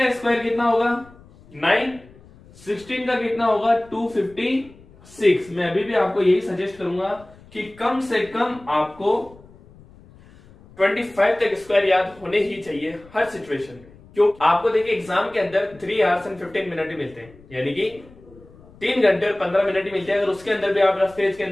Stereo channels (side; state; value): left; noise; rumble, 24 dB below the sound